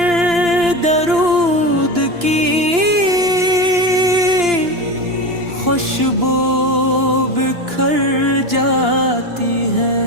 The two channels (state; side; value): late; left; 2.9 ms